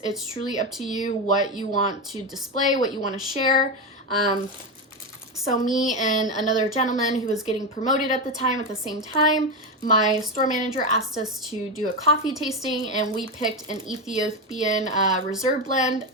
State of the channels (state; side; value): normal; both; correlation 0.12